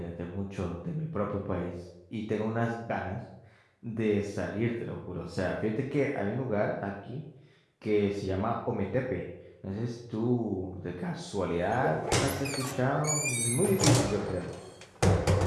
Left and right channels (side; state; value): both; identical; correlation 1.00